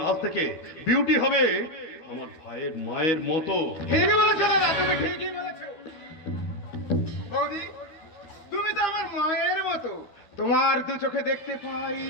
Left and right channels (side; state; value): right; late; 13 ms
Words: আজ থেকে বিউটি হবে আমার ভাইয়ের মায়ের মতো। ঠিকই বলেছো দাদা, তুমি ঠিকই বলেছো। বৌদি, তুমি তো আমার মায়ের মতো। তোমার দু চোখে দেখতে পাই